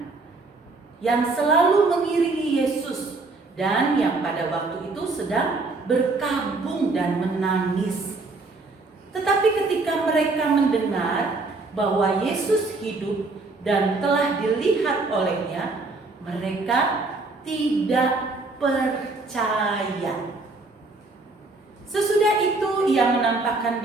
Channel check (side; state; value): left; quieter; 3.5 dB